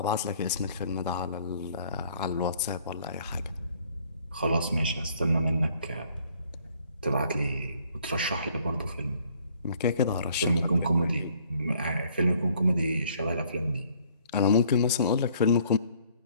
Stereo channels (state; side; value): inverted; both; correlation -0.61